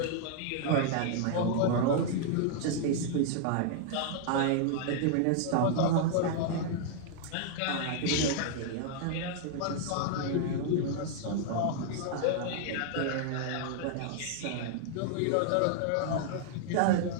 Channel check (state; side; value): different; both; correlation -0.01